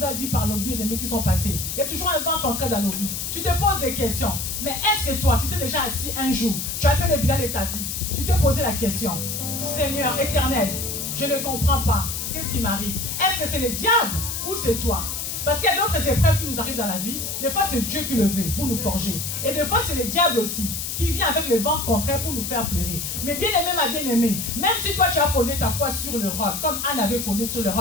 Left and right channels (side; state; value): left; noise; hiss, 4 dB below the sound